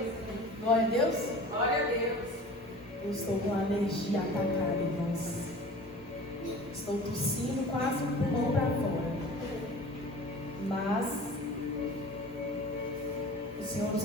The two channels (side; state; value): both; normal; correlation 0.41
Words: Glória a Deus. Glória a Deus! Eu estou com a alergia atacada, irmãos. Estou tossindo quase um pulmão para fora. Mas o Senhor nos